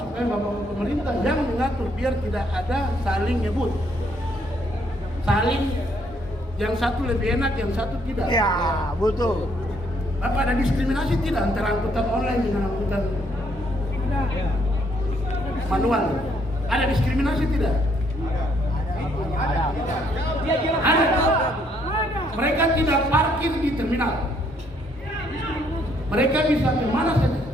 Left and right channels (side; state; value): both; normal; correlation 0.69